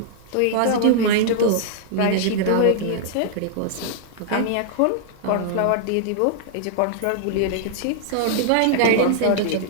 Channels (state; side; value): different; both; correlation -0.01